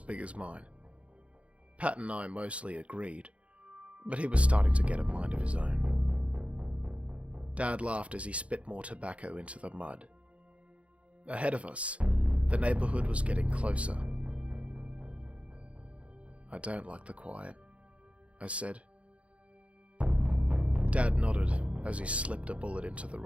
big as mine. Pat and I mostly agreed, but he was starting to get a mind of his own. Dad laughed as he spit more tobacco into the mud. Ahead of us, the neighbourhood was getting closer. I don't like the quiet, I said. Dad nodded as he slipped a bullet into the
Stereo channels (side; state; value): left; late; 0.063 ms